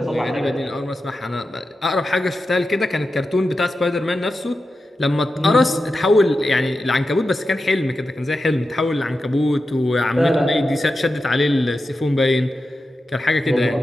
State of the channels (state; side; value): normal; both; correlation 0.91